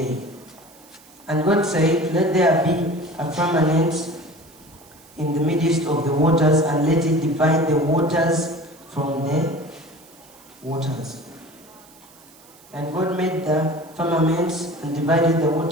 And God said, let there be a firmament in the midst of the waters, and let it divide the waters from the waters. And God made the firmaments and divided the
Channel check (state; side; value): noise; right; hiss, 25 dB below the sound